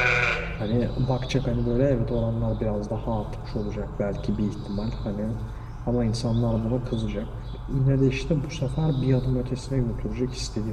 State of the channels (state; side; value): identical; both; correlation 1.00